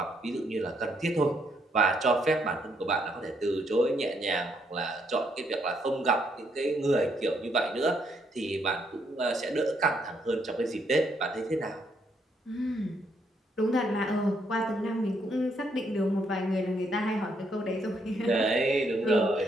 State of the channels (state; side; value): normal; both; correlation 0.74